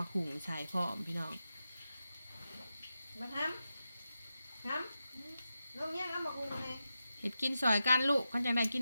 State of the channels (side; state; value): both; inverted; correlation -0.90